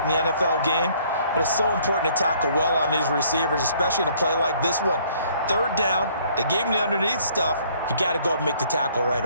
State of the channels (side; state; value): both; inverted; correlation -0.61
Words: in the NFL game, but it's so important to tackle well on these receivers, especially in a play like this one. Third down, they gave him the underneath stuff. You got to go up and make the tackle right